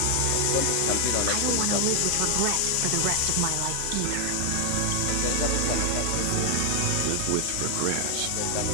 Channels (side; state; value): both; different; correlation 0.00